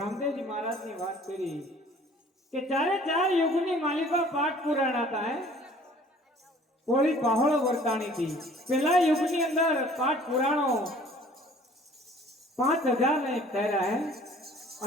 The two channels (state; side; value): normal; both; correlation 0.52